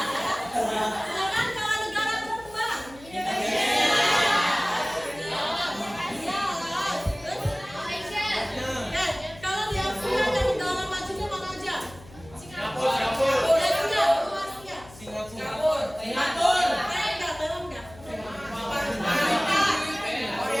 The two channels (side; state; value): left; noise; hum, 20 dB below the sound